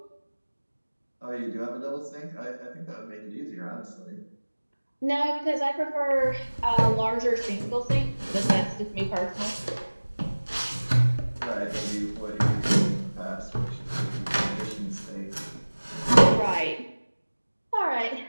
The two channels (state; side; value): inverted; both; correlation -1.00